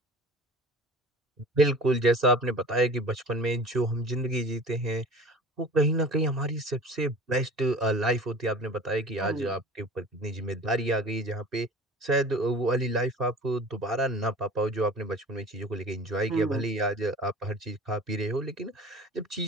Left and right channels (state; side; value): normal; both; correlation 0.41